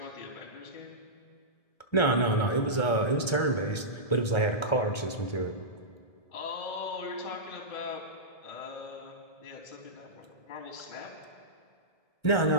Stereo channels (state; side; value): late; right; 1.3 ms